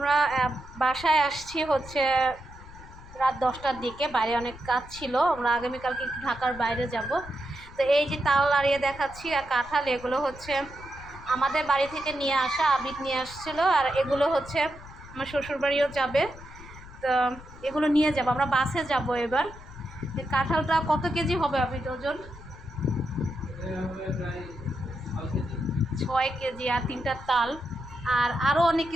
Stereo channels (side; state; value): left; noise; rumble, 17 dB below the sound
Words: আমরা বাসায় আসছি হচ্ছে রাত 10টার দিকে। বাইরে অনেক কাজ ছিল, আমরা আগামীকালকে ঢাকার বাইরে যাব। তো এই যে তাল নাড়িয়ে দেখাচ্ছি আর কাঁঠাল, এগুলো হচ্ছে আমাদের বাড়ি থেকে নিয়ে আসা, আবিদ নিয়ে আসছিলো। আর এগুলো হচ্ছে আমার শ্বশুরবাড়িও যাবে, তো এগুলো নিয়ে যাব, আমরা বাসে যাব এবার। কাঁঠালটা কত কেজি হবে আবিদ ওজন? 6 কেজি। আর 3টা তাল, আর আরও অনেক